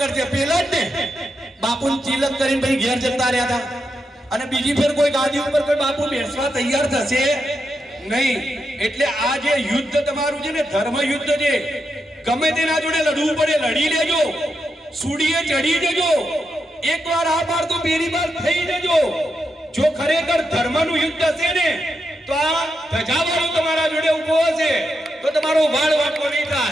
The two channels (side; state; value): both; normal; correlation 0.85